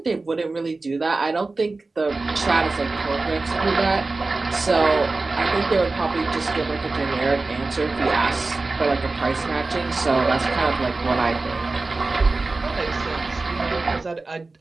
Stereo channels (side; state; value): left; quieter; 3.5 dB